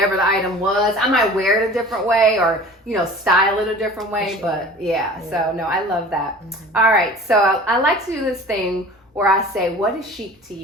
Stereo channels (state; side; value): normal; both; correlation 0.42